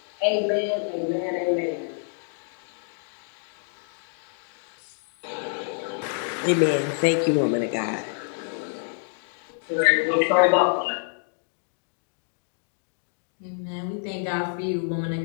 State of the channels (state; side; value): silent; right; digital silence